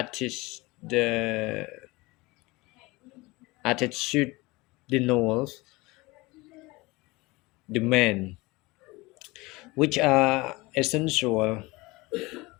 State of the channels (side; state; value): right; quieter; 22.7 dB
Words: attitudinal demand, which are essential